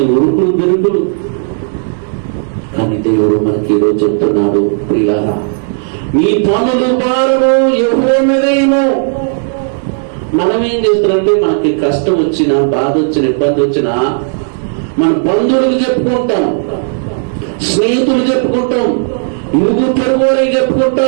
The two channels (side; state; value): left; silent; digital silence